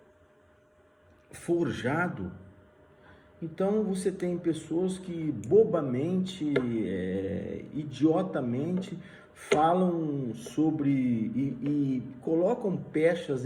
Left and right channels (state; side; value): identical; both; correlation 1.00